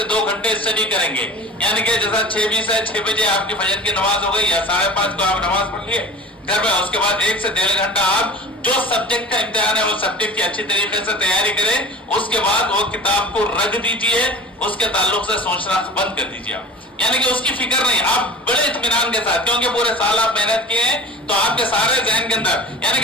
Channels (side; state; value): both; normal; correlation 0.38